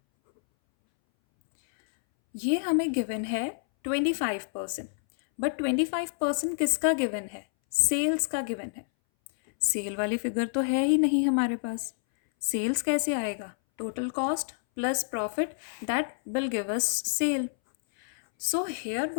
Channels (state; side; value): silent; right; 59 dB below the other